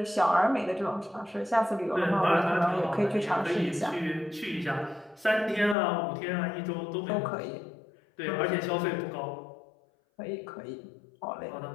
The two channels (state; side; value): drops out; right; at 5.8 s